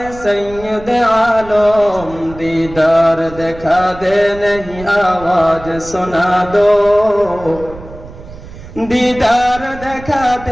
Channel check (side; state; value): right; noise; rumble, 16 dB below the sound